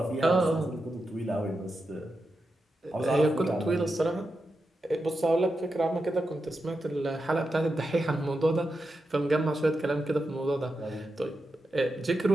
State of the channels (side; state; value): both; normal; correlation 0.88